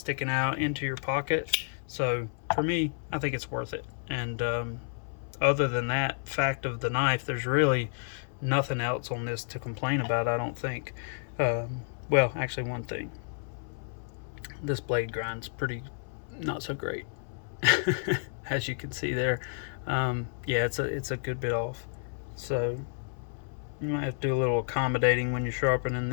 out into your pocket. So for me, I think it's worth it. And other than that fact of the knife, there's really nothing else on this to complain about, I don't think. Well, actually one thing. This blade grind's pretty not so great. As you can see there. Yeah, it's a good bit off. So you might have to do a little accommodating when you're sharpening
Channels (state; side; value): silent; right; 57 dB below the other